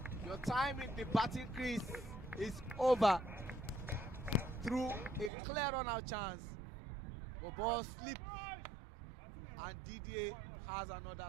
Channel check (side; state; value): left; drops out; at 5.3 s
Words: your time in the batting crease is over, through a clear run-out chance. But ball slipped, and Didier has another